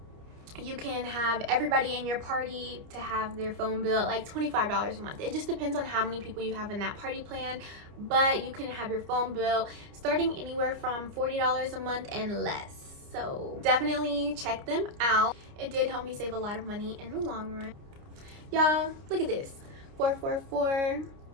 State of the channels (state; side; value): late; left; 29 ms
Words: you can have everybody in your party to have their phone bill at like $25 a month. It just depends on how many people you have in that party plan, but you can have your phone bill starting anywhere from $40 a month and less. So definitely check them out. It did help me save a lot of money in the long run. Y'all, look at this. 444.